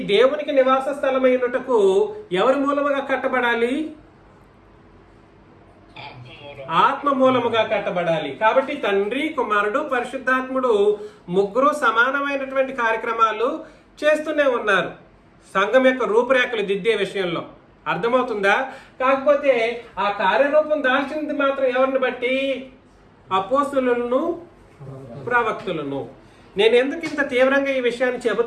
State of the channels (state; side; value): identical; both; correlation 1.00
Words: దేవునికి నివాస స్థలమై ఉండుటకు ఎవరి మూలముగా కట్టబడాలి? ఆత్మ మూలముగా కట్టబడాలి. కాబట్టి తండ్రి, కుమారుడు, పరిశుద్ధాత్ముడు ముగ్గురు సమానమైనటువంటి కార్యక్రమాలు చేస్తూనే ఉన్నారు సంఘం యొక్క రూపురేఖలు దిద్దే విషయంలో. అర్థమవుతుందా? కాకపోతే ఆ కార్యరూపం దాల్చింది మాత్రం ఎవరిని బట్టి? అపోస్తులను, ప్రవక్తులను. నేను ఎందుకు ఇంత తీవ్రంగా ఈ విషయాన్ని